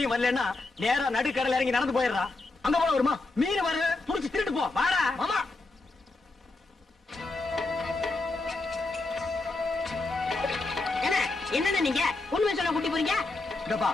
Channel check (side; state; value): right; quieter; 3.3 dB